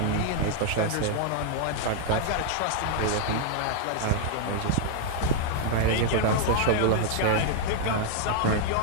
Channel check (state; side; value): different; both; correlation 0.00